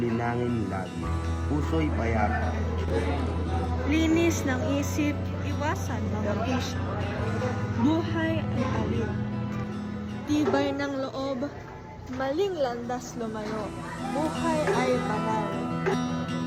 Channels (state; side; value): identical; both; correlation 1.00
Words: lagi, puso'y payapa. Linis ng isip, iwasan mga bisyo. Buhay ay alin. Tibay ng loob, maling landas lumayo. Buhay ay banal.